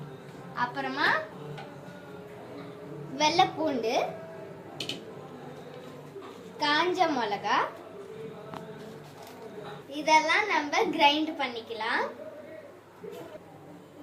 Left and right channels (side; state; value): both; identical; correlation 1.00